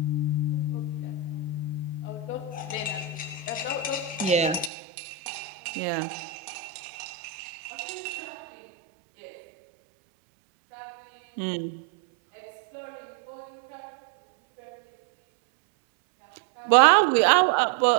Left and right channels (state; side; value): drops out; left; at 4.7 s